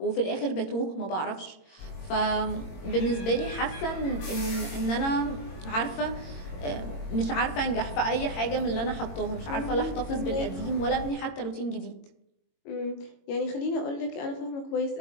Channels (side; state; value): right; late; 22 ms